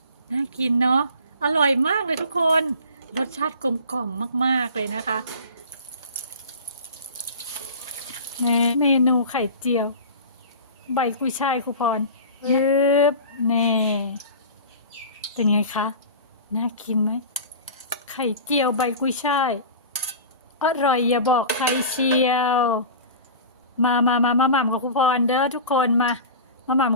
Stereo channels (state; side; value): inverted; both; correlation -0.35